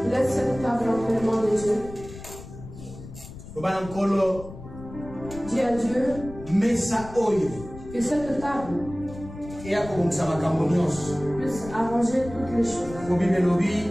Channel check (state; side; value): noise; left; rumble, 14 dB below the sound